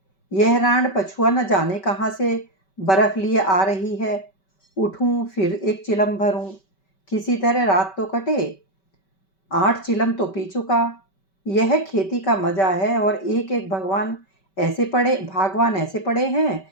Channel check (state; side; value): late; right; 5.2 ms